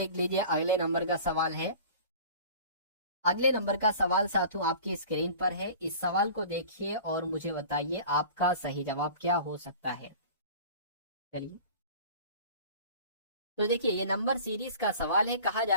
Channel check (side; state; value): both; inverted; correlation -0.42